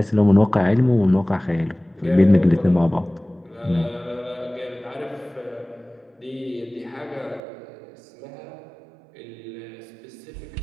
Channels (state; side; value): drops out; left; at 7.4 s